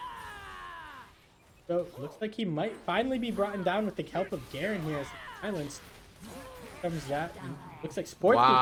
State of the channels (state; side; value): identical; both; correlation 1.00